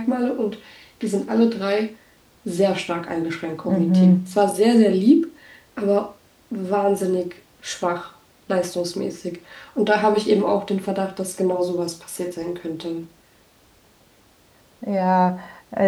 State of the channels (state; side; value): identical; both; correlation 1.00